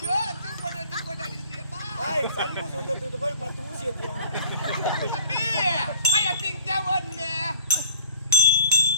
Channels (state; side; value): inverted; both; correlation -0.50